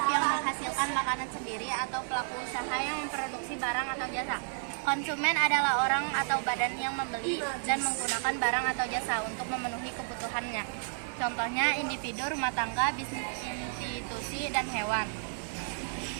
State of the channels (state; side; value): silent; left; digital silence